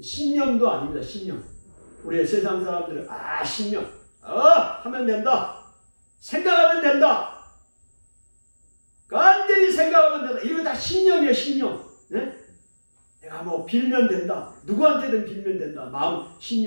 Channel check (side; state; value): both; inverted; correlation -1.00